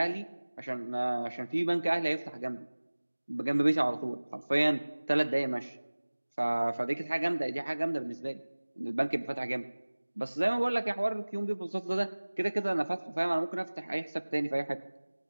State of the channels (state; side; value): inverted; both; correlation -1.00